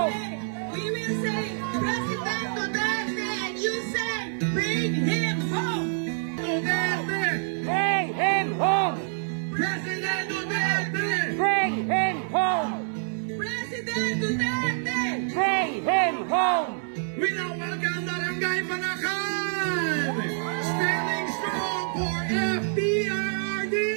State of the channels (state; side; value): silent; left; digital silence